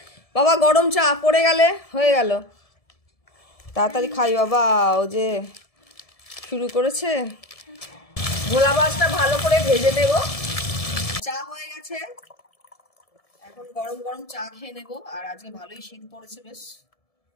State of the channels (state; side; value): late; right; 1.7 ms